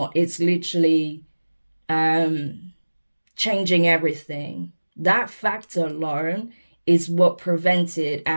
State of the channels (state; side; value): inverted; both; correlation -1.00